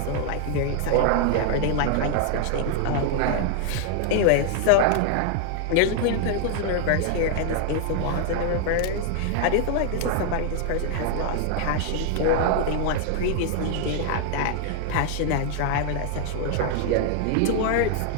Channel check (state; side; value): different; both; correlation 0.00